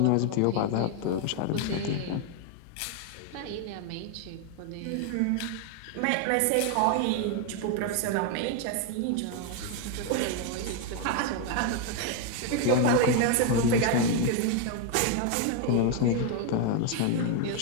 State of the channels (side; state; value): both; different; correlation 0.01